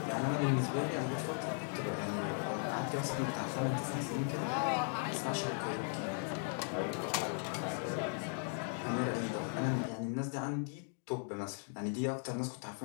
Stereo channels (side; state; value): right; silent; 53 dB below the other